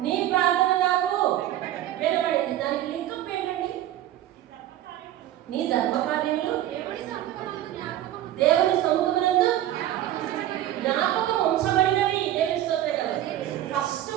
నీ ప్రార్థన నాకు వినబడింది. దానికి లింకప్ ఏంటండి? నీ ధర్మకార్యములు దేవుని సముఖమునందు జ్ఞాపకం ఉంచబడినవి. దేవుని స్తోత్రం కదా.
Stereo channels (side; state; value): left; quieter; 13.0 dB